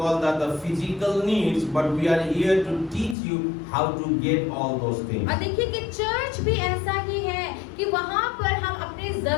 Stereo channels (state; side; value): drops out; right; at 3.2 s